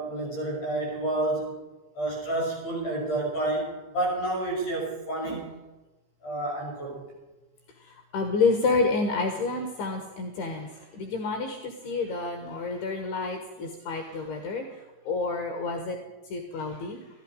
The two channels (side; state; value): right; late; 15 ms